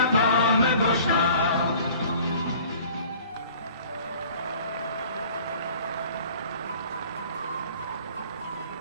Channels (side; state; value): both; inverted; correlation -0.49